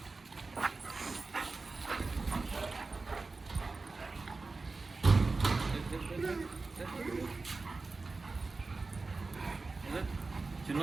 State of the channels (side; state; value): left; quieter; 3.8 dB